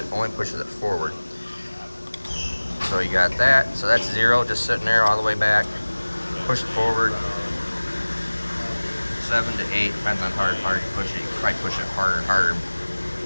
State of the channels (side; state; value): both; inverted; correlation -1.00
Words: only pushes it forward. So you got that. So that's 0, just sitting there all the way back. Push it forward. 7 to 8, depends on how hard you push it. You can probably push it harder and harder.